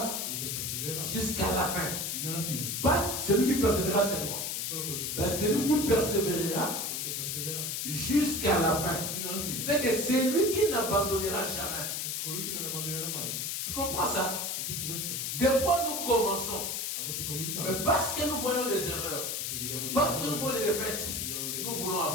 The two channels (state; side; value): noise; left; hiss, 2 dB below the sound